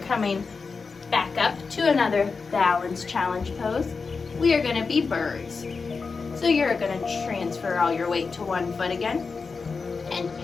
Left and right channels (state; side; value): quieter; right; 4.7 dB